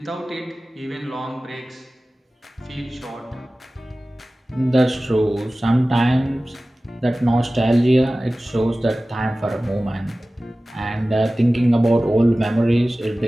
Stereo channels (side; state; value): both; normal; correlation 0.97